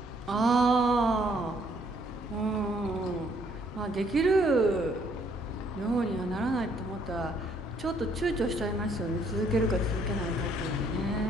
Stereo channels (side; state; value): both; normal; correlation 0.66